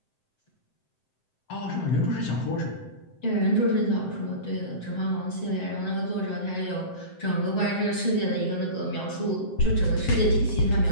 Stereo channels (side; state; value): right; late; 7.7 ms